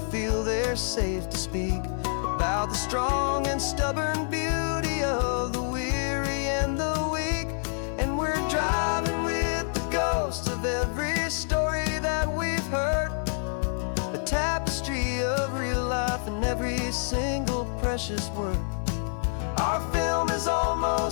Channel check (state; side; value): silent; right; 60 dB below the other